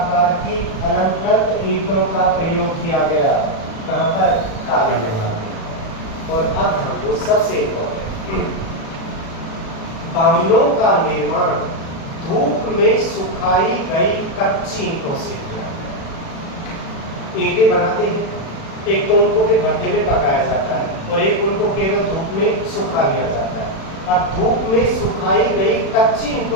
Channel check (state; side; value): late; right; 36 ms